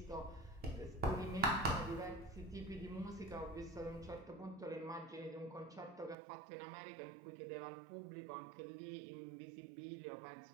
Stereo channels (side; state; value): left; drops out; at 6.2 s